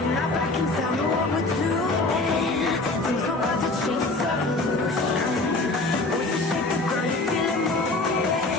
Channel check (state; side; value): quieter; right; 3.1 dB